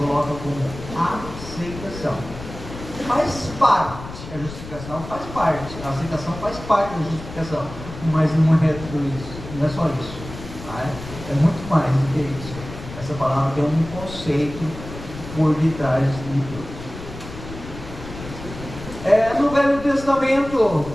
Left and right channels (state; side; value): noise; left; rumble, 12 dB below the sound